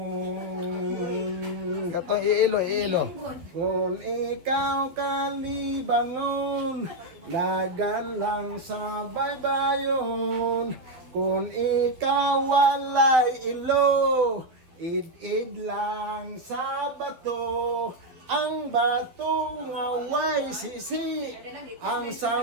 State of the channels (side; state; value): left; late; 12 ms